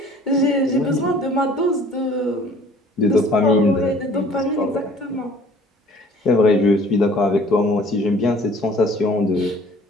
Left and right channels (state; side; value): normal; both; correlation 0.52